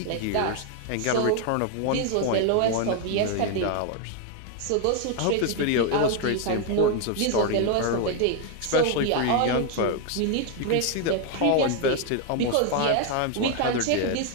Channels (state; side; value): different; both; correlation 0.01